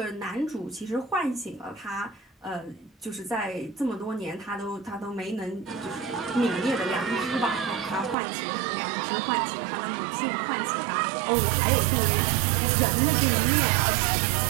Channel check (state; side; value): drops out; left; at 8.2 s